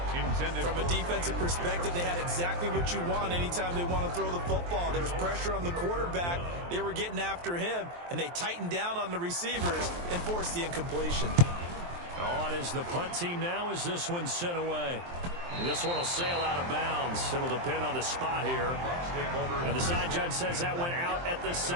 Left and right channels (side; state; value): left; late; 23 ms